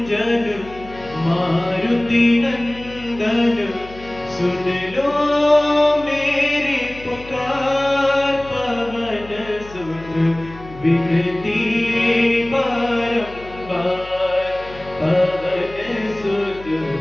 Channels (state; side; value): noise; left; hum, 18 dB below the sound